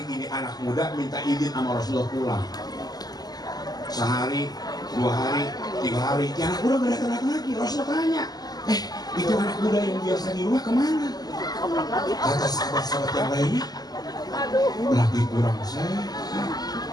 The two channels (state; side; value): late; right; 0.19 ms